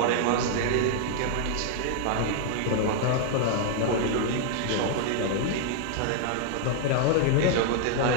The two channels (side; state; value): both; different; correlation 0.00